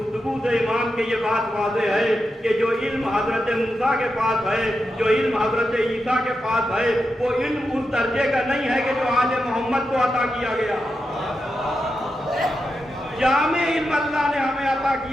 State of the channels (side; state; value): both; normal; correlation 0.88